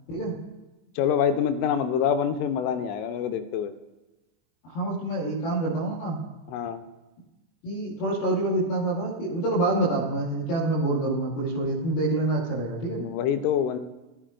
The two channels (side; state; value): right; late; 24 ms